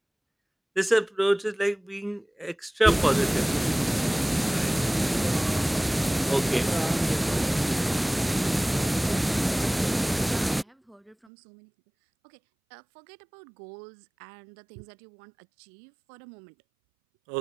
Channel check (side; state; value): left; drops out; at 11.2 s